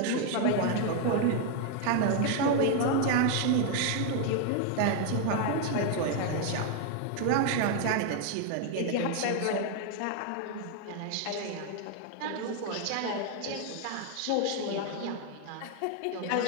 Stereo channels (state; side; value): different; both; correlation 0.00